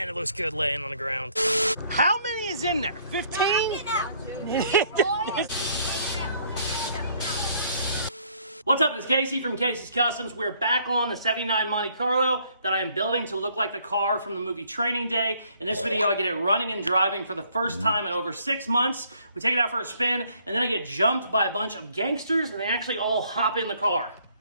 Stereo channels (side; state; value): both; inverted; correlation -0.64